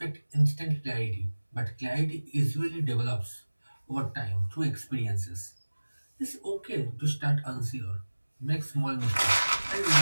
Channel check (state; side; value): inverted; both; correlation -1.00